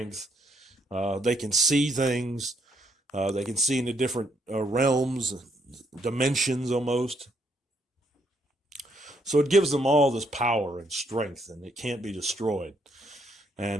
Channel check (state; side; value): normal; both; correlation 0.73